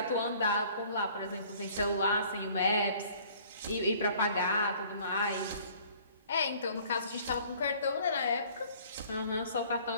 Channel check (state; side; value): inverted; both; correlation -0.54